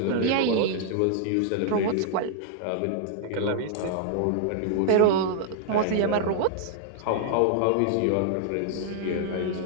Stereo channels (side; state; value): both; different; correlation 0.00